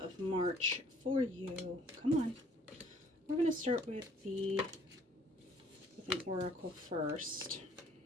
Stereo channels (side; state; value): both; normal; correlation 0.59